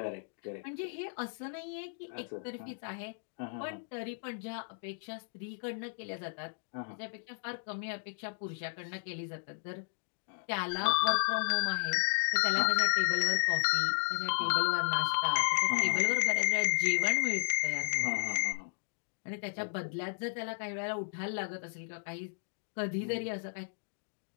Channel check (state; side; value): silent; right; digital silence